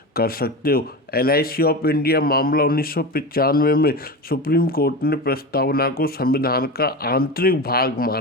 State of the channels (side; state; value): both; normal; correlation 0.25